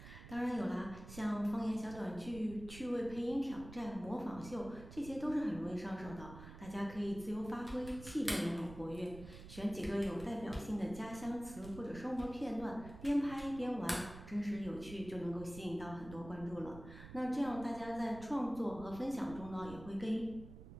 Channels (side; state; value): right; noise; rumble, 14 dB below the sound